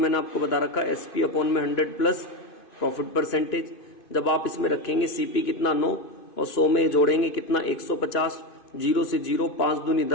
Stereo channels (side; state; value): right; late; 2.5 ms